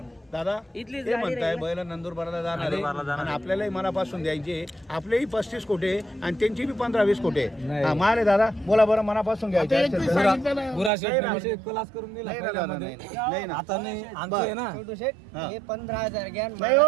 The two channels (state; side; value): drops out; left; at 10.9 s